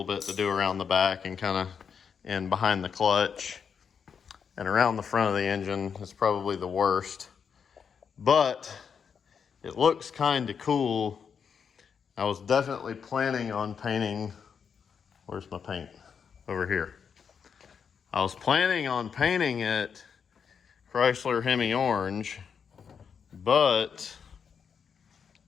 bit to do around the back and kind of in behind the clutch. And around the front of the engine is probably the worst, but it looks kind of cool. I was definitely planning on painting, where's my paint? Over here. I was planning on painting it Chrysler Hemi orange, but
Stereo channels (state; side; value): quieter; right; 6.7 dB